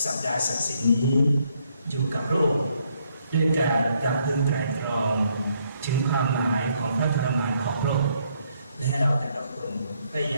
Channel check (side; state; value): both; inverted; correlation -0.71